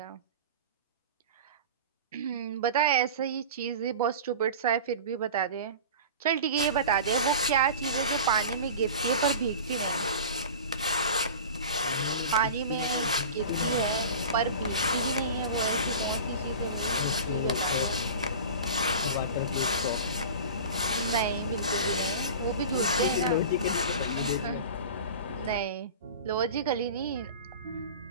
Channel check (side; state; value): both; inverted; correlation -0.35